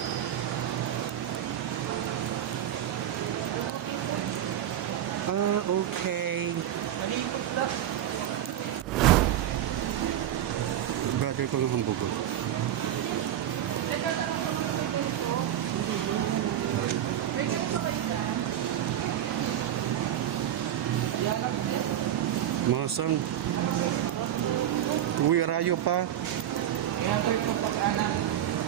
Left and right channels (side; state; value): left; quieter; 11.1 dB